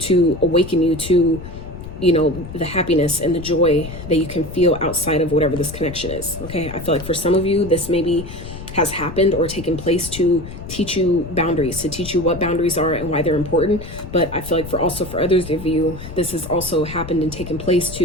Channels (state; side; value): noise; left; rumble, 12 dB below the sound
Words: awaken you to, you know, the happiness and the joy that you can feel outside of whatever this connection is. Okay. I feel like for some of you, this maybe has happened or taken place to teach you boundaries, to teach you what boundaries are and why they're important. But I feel like for others of you, this has also happened and taken place